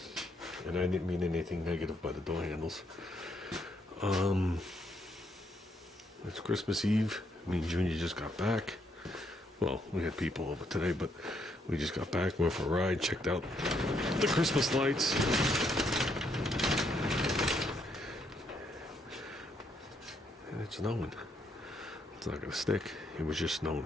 And I didn't mean anything negative by the door handles. It's Christmas Eve. Me and Junior just got back. Well, we had people over today, but we just got back, went for a ride, checked out the Christmas lights. And it's snowing. It's not gonna stick. It was just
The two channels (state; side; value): normal; both; correlation 0.74